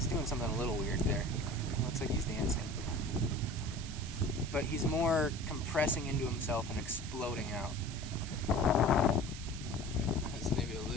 doing something a little weird there. It looks like he's dancing. But he's more compressing into himself and exploding out. That's maybe a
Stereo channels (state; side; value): noise; right; hiss, 12 dB below the sound